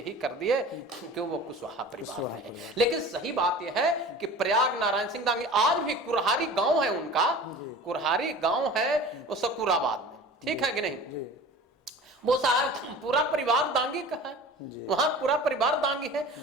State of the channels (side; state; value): both; normal; correlation 0.40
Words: कर दिए कि वो कुशवाहा परिवार से है। लेकिन सही बात यह है कि प्रयाग नारायण सिंह दांगी, आज भी कुरहारी गांव है उनका, कुरहारी गांव है वो सकुराबाद में, ठीक है कि नहीं। वो साहब पूरा परिवार दांगी का है, वहां पूरा परिवार दांगी है।